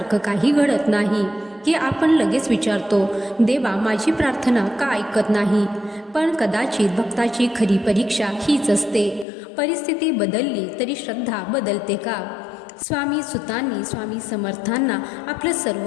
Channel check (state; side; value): drops out; right; at 9.2 s